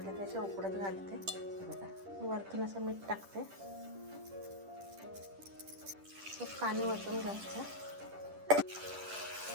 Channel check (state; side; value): late; left; 10 ms